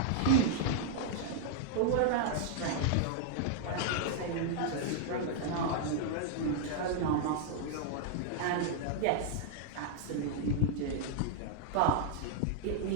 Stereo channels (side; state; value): both; different; correlation 0.00